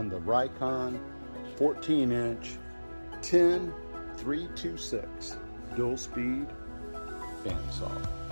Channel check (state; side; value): inverted; both; correlation -1.00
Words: the Rikon 14-inch 10326 dual speed bandsaw.